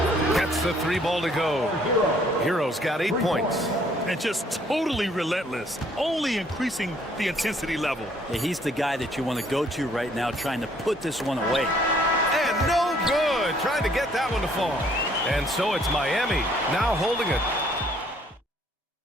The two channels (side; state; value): both; normal; correlation 0.63